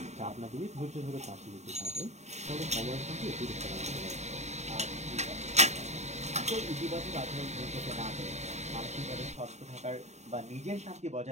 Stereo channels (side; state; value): left; late; 0.32 ms